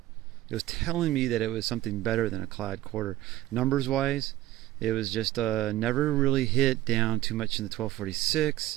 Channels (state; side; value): quieter; left; 15.3 dB